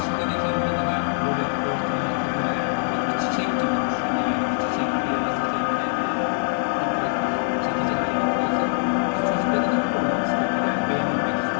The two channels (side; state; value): right; silent; digital silence